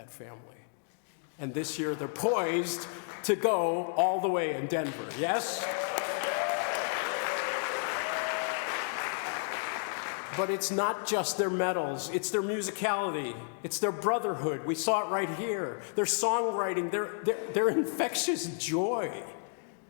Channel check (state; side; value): silent; right; 57 dB below the other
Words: family. And this year they're poised to go all the way in Denver, yes? But it's not just their medals, it's their musicality, it's their brotherhood. We saw it right here. Their songwriting, their infectious joy.